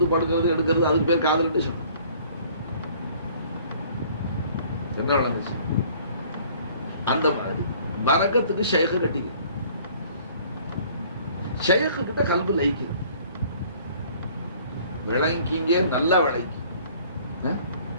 படுக்கிறது எடுக்கிறது அதுக்கு பேர் காதல் சொன்ன என்ன நடந்துச்சு. அந்த மாதிரி பரக்கத்துக்கு ஷேഖ് கட்டிக்க, ஷேഖ் கிட்ட கல்பு லைக்கு விளங்கிங்க, நல்லா விளங்கி,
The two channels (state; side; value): inverted; both; correlation -0.54